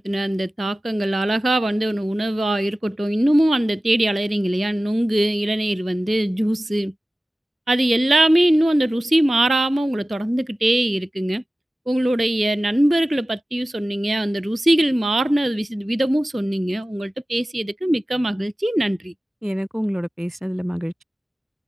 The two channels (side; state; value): both; normal; correlation 0.96